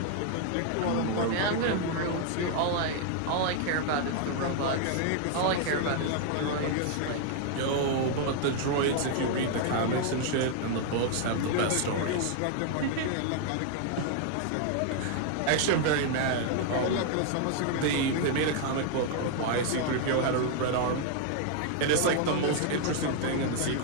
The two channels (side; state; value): both; different; correlation 0.00